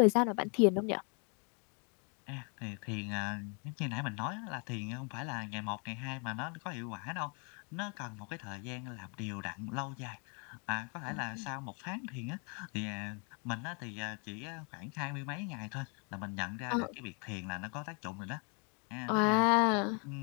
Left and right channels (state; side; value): quieter; right; 36.7 dB